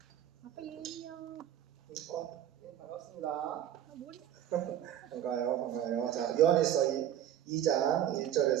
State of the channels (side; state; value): left; quieter; 11.0 dB